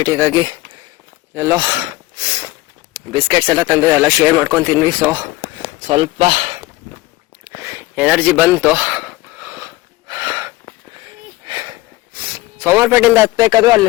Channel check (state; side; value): quieter; right; 19.5 dB